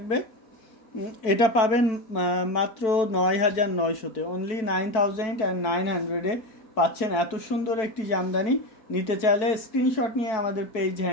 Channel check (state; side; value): late; right; 4.6 ms